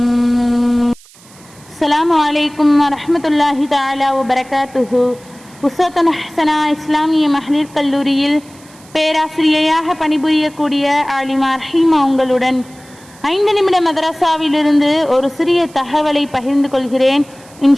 السلام عليكم ورحمة الله تعالى وبركاته. உஸ்வத்துன் ஹஸனா இஸ்லாமிய மகளிர் கல்லூரியில் பேராசிரியையாக பணிபுரியக்கூடிய ஆலிமா ரஹீமா உங்களுடன் 5 நிமிட மதரசாவிலிருந்து ஒரு சிறிய தகவலை பகிர்ந்து கொள்கிறேன்.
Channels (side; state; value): right; noise; hiss, 25 dB below the sound